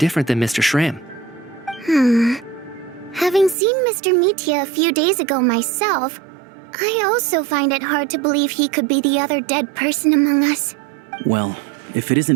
than Mr. Schramm. Having seen Mr. Mitya a few days ago myself, I also find it hard to believe he could be the other dead person among us. Well, if it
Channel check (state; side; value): drops out; left; at 3.6 s